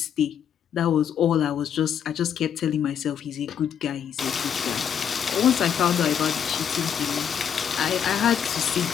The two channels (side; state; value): right; quieter; 8.4 dB